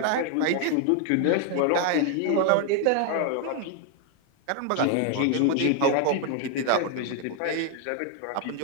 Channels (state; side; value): different; both; correlation 0.00